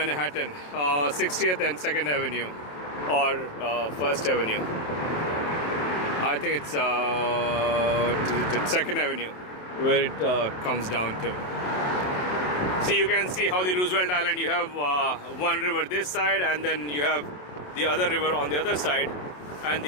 60th and 2nd Avenue or 1st Avenue. I think it's 2nd Avenue where it comes down to. See, you can see how the Roosevelt Island, you have one river this side and then you have the other river on the other side, and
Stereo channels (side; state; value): right; late; 27 ms